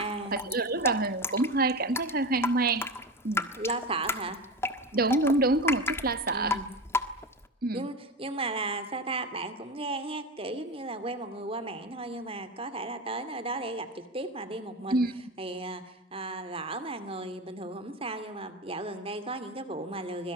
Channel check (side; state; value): both; normal; correlation 0.23